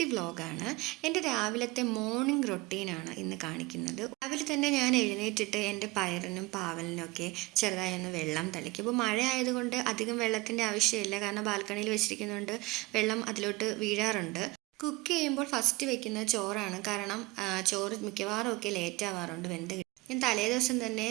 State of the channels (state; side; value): quieter; left; 22.6 dB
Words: വ്ലോഗാണ്. എൻ്റെ രാവിലത്തെ മോർണിംഗ് റൊട്ടീനാണ് ഇന്ന് കാണിക്കുന്നത്. രാവിലെ തന്നെ ഞാൻ എഴുന്നേറ്റിട്ട് എൻ്റെ പയറിനും പാവലിനും ഒക്കെ ചെറുതായി ഒന്ന് വെള്ളം തളിക്കും. ഇപ്പോൾ മഴ ആയതുകൊണ്ട് അധികം വെള്ളത്തിൻ്റെ ആവശ്യമില്ല, കാരണം ബാൽക്കണിയിൽ വെച്ചിരിക്കുന്നതുകൊണ്ട് വെള്ളം അതിലോട്ട് വീഴാറുണ്ട്. കുക്ക് ചെയ്യുമ്പോൾ ഫസ്റ്റ് വെക്കുന്നത് ചോറാണ്, കാരണം ചോറ് മിക്കവാറും ഒക്കെ ലേറ്റ് ആവാറുണ്ട് വെന്ത്. ഞാൻ തലേ ദിവസം തന്നെ